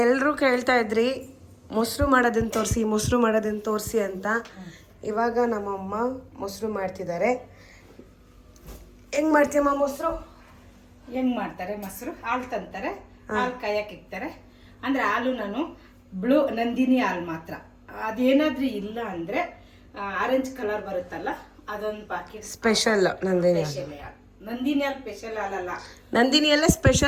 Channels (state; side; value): identical; both; correlation 1.00